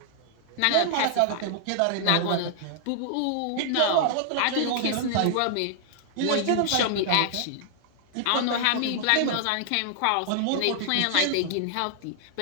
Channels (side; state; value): both; different; correlation -0.01